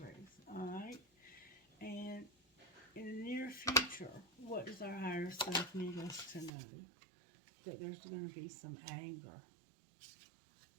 All right? And in the near future, what does our higher self need us to know? That there's going to be some anger.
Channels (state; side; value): drops out; left; at 6.5 s